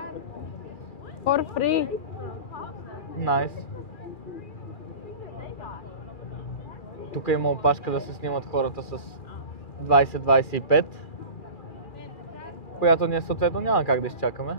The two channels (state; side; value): late; right; 2.4 ms